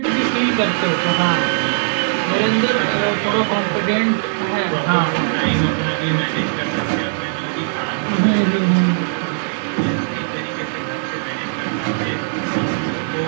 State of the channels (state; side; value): silent; left; digital silence